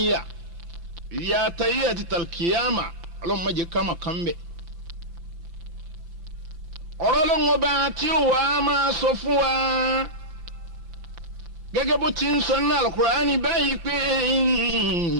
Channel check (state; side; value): late; left; 5.8 ms